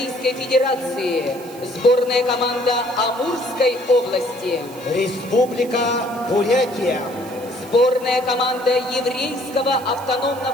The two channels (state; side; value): noise; right; hiss, 20 dB below the sound